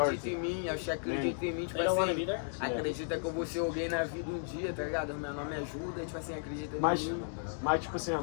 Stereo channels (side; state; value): right; silent; digital silence